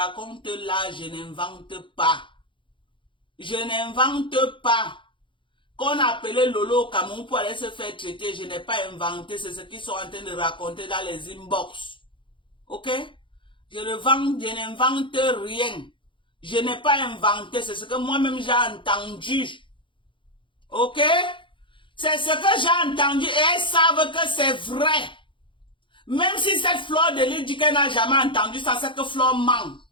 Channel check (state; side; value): late; right; 0.24 ms